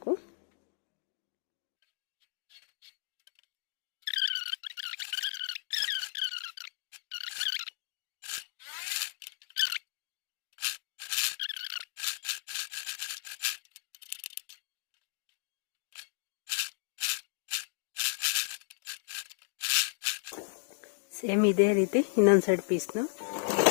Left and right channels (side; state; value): right; silent; digital silence